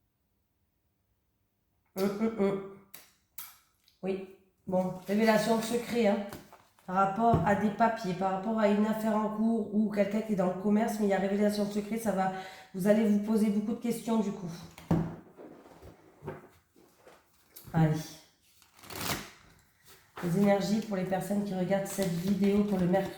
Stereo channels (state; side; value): identical; both; correlation 1.00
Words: Oui, bon, révélation de secret, hein, par rapport à des papiers, par rapport à une affaire en cours ou quelqu'un qui est dans le commerce, mais il y a révélation de secret, ça va... Vous allez vous poser beaucoup de questions du coup. Allez. Les énergies pour les personnes qui regardent cette vidéo pour le